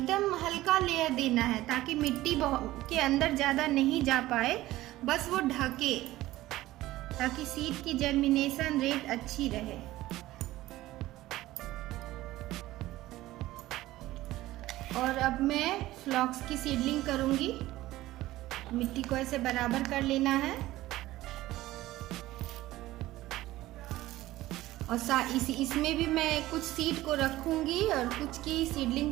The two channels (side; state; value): left; quieter; 16.5 dB